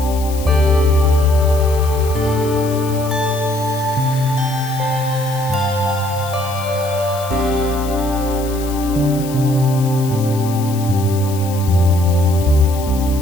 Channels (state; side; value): noise; left; hiss, 14 dB below the sound